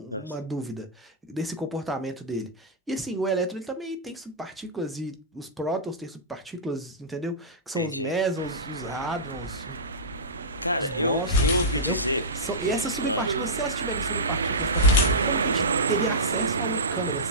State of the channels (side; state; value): both; normal; correlation -0.14